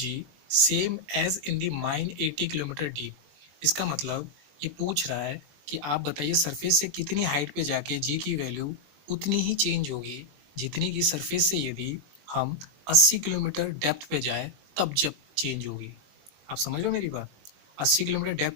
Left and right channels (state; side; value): late; left; 20 ms